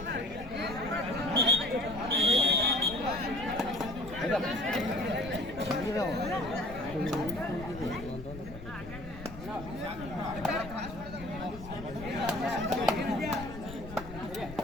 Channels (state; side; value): noise; left; rumble, 13 dB below the sound